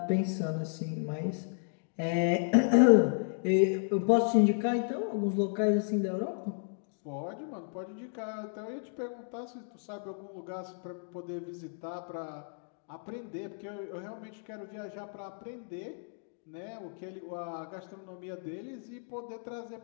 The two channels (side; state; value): right; silent; digital silence